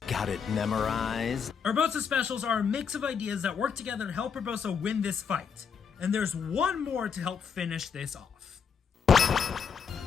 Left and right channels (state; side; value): quieter; right; 6.6 dB